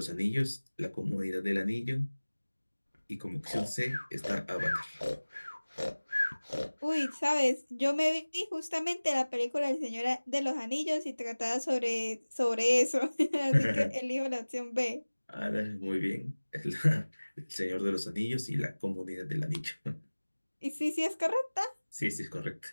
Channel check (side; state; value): both; inverted; correlation -1.00